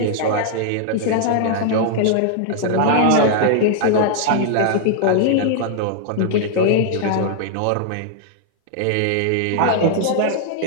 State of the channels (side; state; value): both; different; correlation -0.01